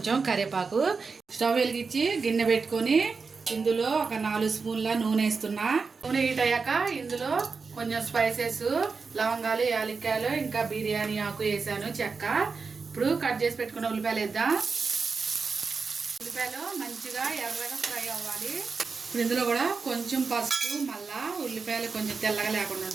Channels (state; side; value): quieter; left; 4.8 dB